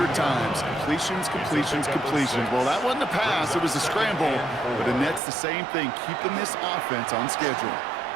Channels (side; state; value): left; drops out; at 5.2 s